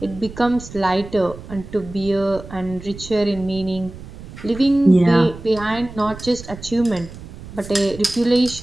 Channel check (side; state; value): right; noise; rumble, 14 dB below the sound